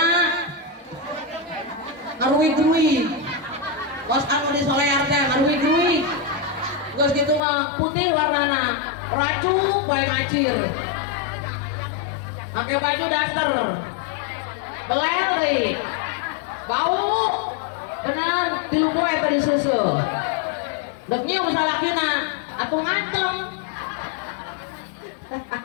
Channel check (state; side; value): drops out; right; at 7.4 s